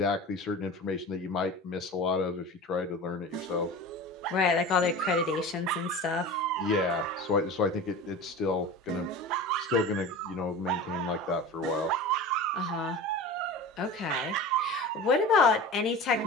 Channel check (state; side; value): normal; both; correlation 0.33